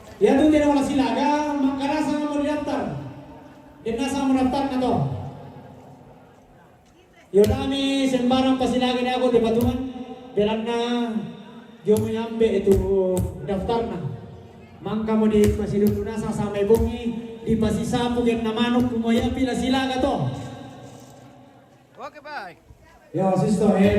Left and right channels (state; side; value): identical; both; correlation 1.00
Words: Ya tu tidak wala silaga, makana sa mo daftar. Din sa mo daftar na to. Yo nami sembarang pasilaga na ako di batuan. Bilang na yung mayambe itu daftar na. Mangka mo di masidun na sa samay bungi di pasisapog yung namanok kumaya pila sila ka to. Oke baik. Yo sisto,